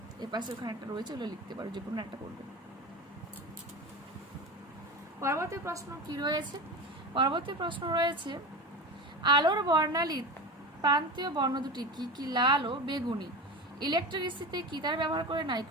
এ পাশে ওখানে একটা রয়েছে, ওগুলো লিখতে পারো, যে কোনো একটা করবে। পরবর্তী প্রশ্ন কি রয়েছে? পরবর্তী প্রশ্ন রয়েছে আলোর বর্ণালীর প্রান্তীয় বর্ণ দুটি কি কি? লাল ও বেগুনি। ইলেকট্রিসিটিতে কি তার ব্যবহার করে?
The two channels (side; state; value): both; normal; correlation 0.26